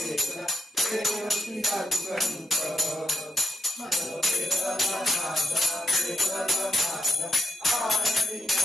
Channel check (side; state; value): both; normal; correlation 0.82